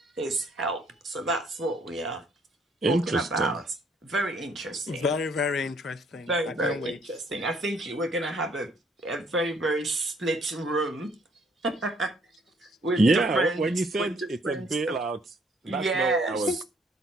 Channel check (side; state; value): both; normal; correlation 0.64